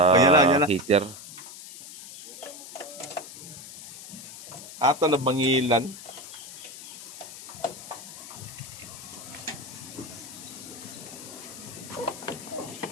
heater. Ato na bangilan.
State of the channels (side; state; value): left; noise; hiss, 13 dB below the sound